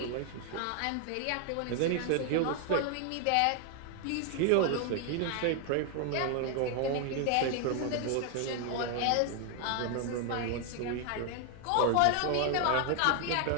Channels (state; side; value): different; both; correlation 0.00